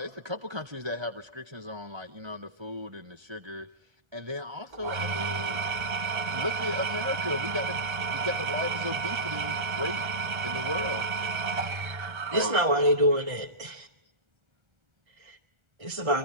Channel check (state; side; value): late; left; 1.4 ms